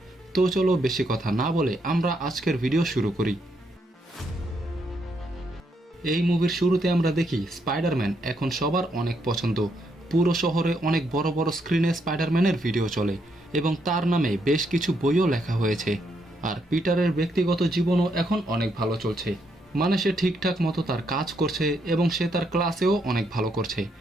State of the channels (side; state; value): both; normal; correlation 0.76